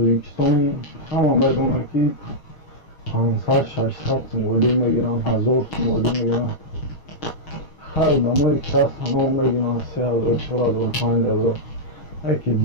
همه میدونه که 500-600 سمولی میگیرن 1000 سمولی میگیرن هر دمایی که هست همه میگیرن 3000 4000 5000 یکی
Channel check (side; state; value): right; late; 6.4 ms